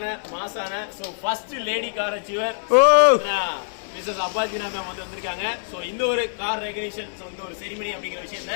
மாசான so first lady car achiever Mrs அப்பாஜினா மேம் வந்து வந்திருக்காங்க. ஸோ இந்த ஒரு கார் ரெகக்னிஷன் ஸோ இந்த ஒரு செரிமனி அப்படிங்கிற விஷயத்த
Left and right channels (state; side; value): silent; right; digital silence